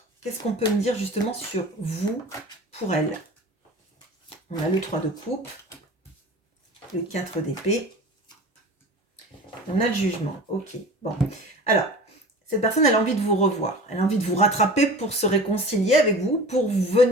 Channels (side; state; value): both; normal; correlation 0.38